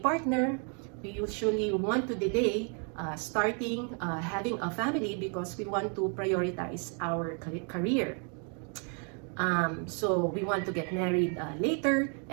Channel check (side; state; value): left; quieter; 39.9 dB